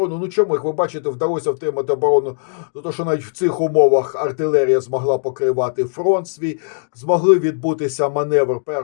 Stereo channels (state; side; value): silent; right; digital silence